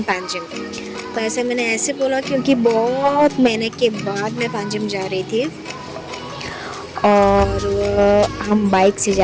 पांजिम। तो ऐसे मैंने ऐसे बोला क्योंकि बहुत महीने के बाद मैं पांजिम जा रही थी और हम बाइक से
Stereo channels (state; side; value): identical; both; correlation 1.00